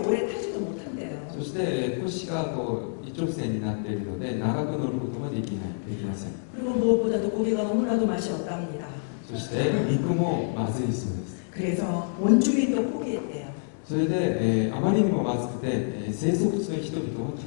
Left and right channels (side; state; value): right; silent; digital silence